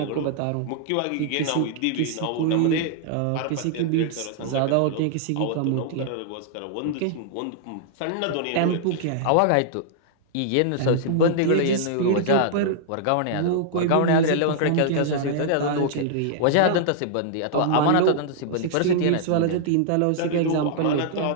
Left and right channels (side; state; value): both; different; correlation -0.01